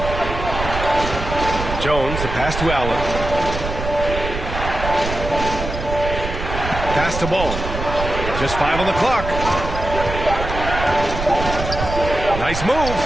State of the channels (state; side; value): noise; right; rumble, 6 dB below the sound